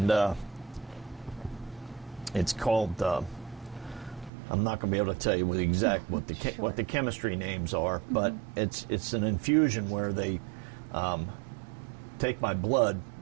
it's called. I'm not going to be able to tell you what the chemistry names are, but it's an infusion where they take my blood,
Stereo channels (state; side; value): drops out; left; at 4.3 s